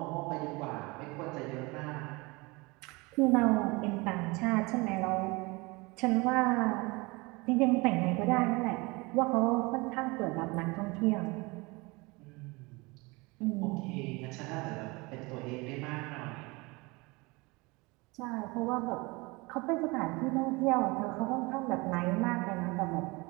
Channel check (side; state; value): left; quieter; 25.2 dB